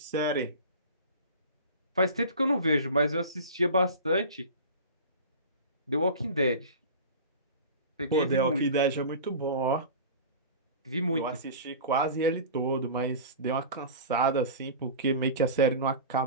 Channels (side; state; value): both; inverted; correlation -0.34